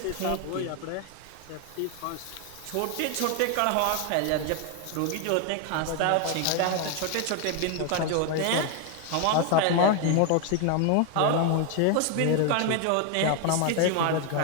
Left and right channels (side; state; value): both; different; correlation 0.01